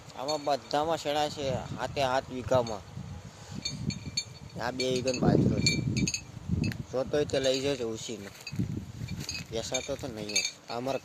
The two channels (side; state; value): both; identical; correlation 1.00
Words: આમાં બધામાં શેણા છે. હાથ વીઘામાં આ 2 વીઘાનો બાજરો છે. જોતોય તે લઈ જજો ઉછીને. બેસાતો તો નહીં. આ અમારા